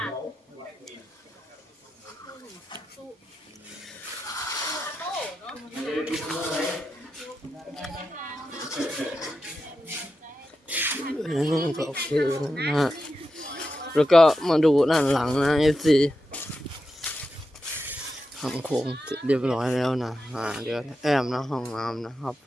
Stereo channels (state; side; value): normal; both; correlation 0.89